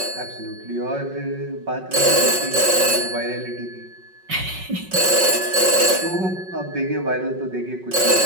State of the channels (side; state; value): left; late; 5.4 ms